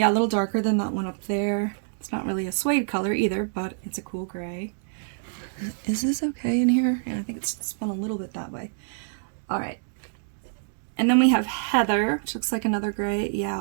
a little darker than that one up there. It's not really a suede color either, but it's a cool gray. Is this okay in here? Yeah, I think it's spun a little bit that way. All right. And then we have Heather, which looks like another gray.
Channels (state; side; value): silent; left; digital silence